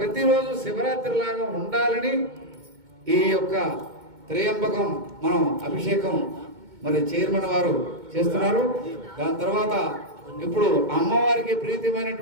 ప్రతిరోజు శివరాత్రి లాగా ఉండాలని ఈ యొక్క త్రయంబకం మనం అభిషేకం మరి చైర్మన్ వారు చేస్తున్నారు. దాని తర్వాత ఇప్పుడు అమ్మవారికి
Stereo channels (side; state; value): left; late; 2.2 ms